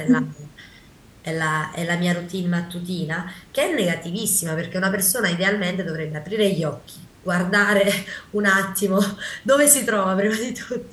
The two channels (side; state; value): both; identical; correlation 1.00